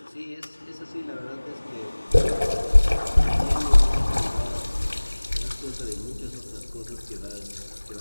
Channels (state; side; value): inverted; both; correlation -1.00